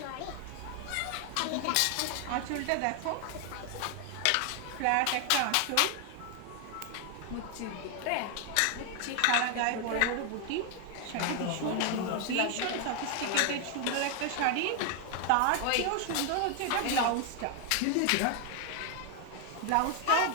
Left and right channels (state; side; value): different; both; correlation 0.00